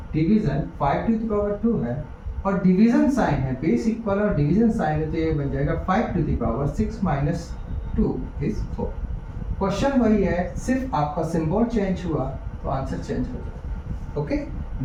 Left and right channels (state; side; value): identical; both; correlation 1.00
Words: division 5 to the power 2 है और डिवीजन साइन है, बेस इक्वल और डिवीजन साइन है, तो ये बन जाएगा 5 to the power 6 minus 2 is 4। Question वही है, सिर्फ आपका सिंबल चेंज हुआ तो आंसर चेंज हो जाएगा। ओके,